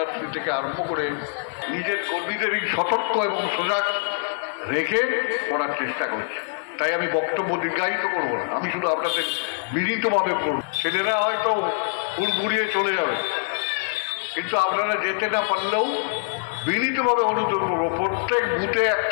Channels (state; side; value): silent; right; 56 dB below the other